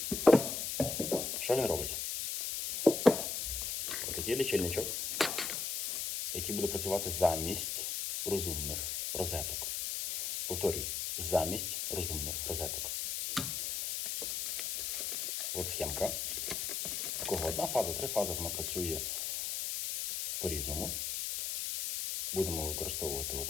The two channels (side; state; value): left; noise; hiss, 2 dB below the sound